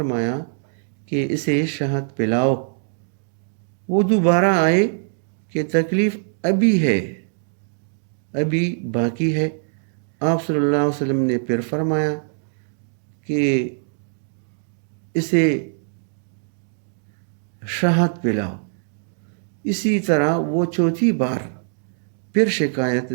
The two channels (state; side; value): silent; left; digital silence